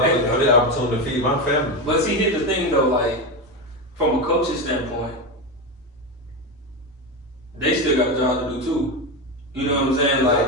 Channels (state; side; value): normal; both; correlation 0.15